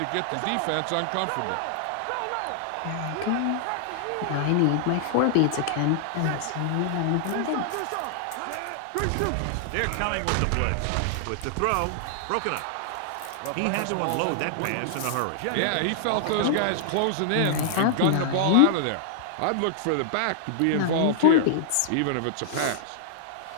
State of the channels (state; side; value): different; both; correlation -0.01